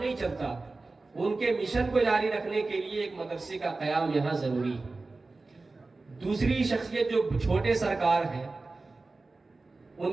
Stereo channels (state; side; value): quieter; left; 3.5 dB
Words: چلتا۔ ان کے مشن کو جاری رکھنے کے لیے ایک مدرسے کا قیام یہاں ضروری ہے۔ دوسری شخصیت جو چھوٹے سرکار ہیں،